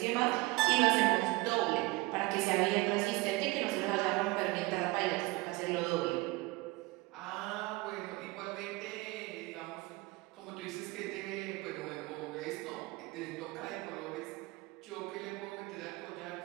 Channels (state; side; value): quieter; left; 22.5 dB